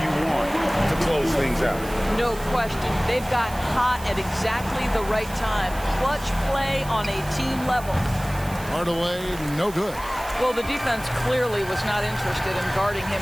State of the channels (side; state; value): right; noise; hiss, 16 dB below the sound